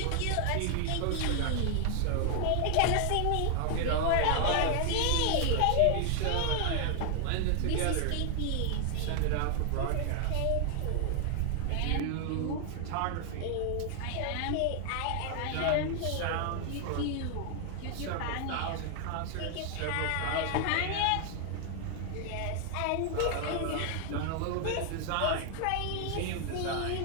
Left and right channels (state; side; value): different; both; correlation 0.00